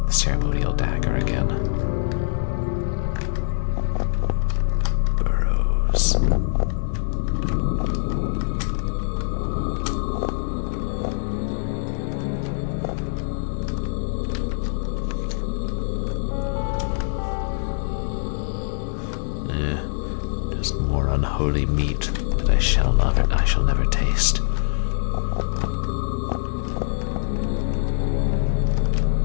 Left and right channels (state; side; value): silent; right; digital silence